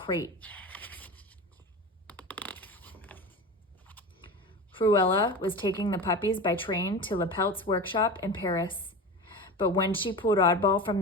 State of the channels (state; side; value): normal; both; correlation 0.28